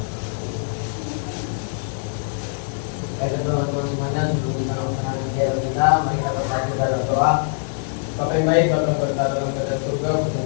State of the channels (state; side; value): silent; right; digital silence